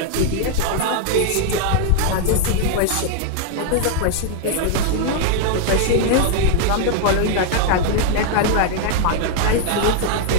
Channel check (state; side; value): different; both; correlation 0.00